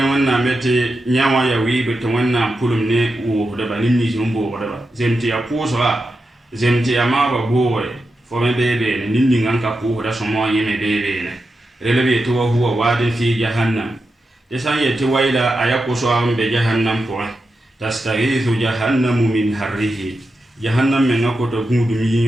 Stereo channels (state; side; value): normal; both; correlation 0.89